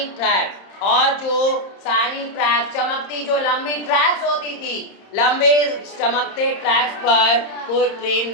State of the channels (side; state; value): right; late; 30 ms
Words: ट्रैक, और जो शाइनिंग ट्रैक चमकती, जो लंबी ट्रैक्स होती थी, लंबे चमकते ट्रैक्स पर कोई ट्रेन